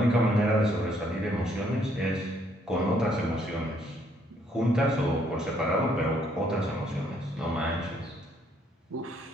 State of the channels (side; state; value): both; normal; correlation 0.68